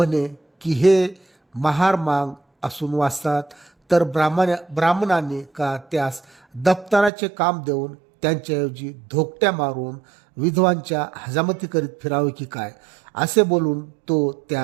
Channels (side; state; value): left; drops out; at 7.1 s